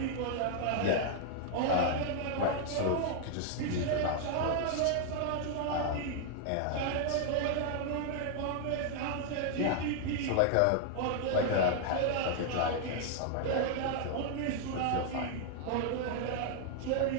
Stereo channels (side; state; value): both; different; correlation 0.00